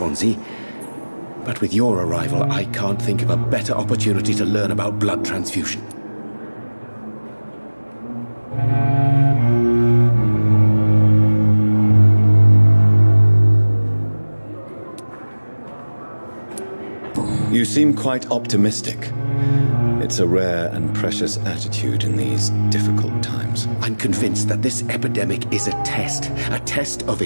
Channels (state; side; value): inverted; both; correlation -1.00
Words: But with your arrival, I can't think of a better opportunity to learn about blood transfusion. You seem quite optimistic. It's a rare and precious attitude in these difficult times. I'm convinced that this epidemic is a test of